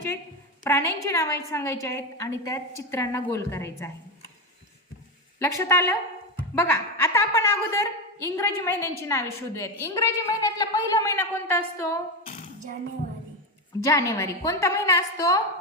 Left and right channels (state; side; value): normal; both; correlation 0.13